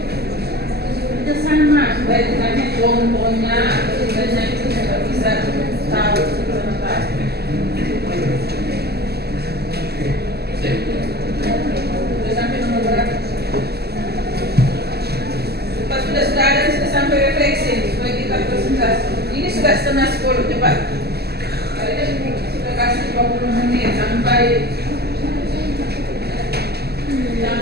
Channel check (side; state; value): left; late; 0.46 ms